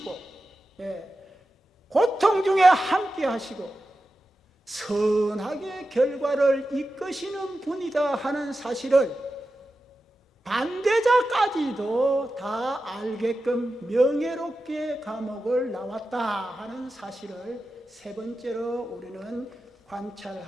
고통 중에 함께 하시고 선하게 결과를 이끄시는 분이다 하는 사실을 반대자까지도 다 알게끔 명예롭게 감옥을 나왔다 하는 사실을 세 번째로 우리는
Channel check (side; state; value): both; normal; correlation 0.92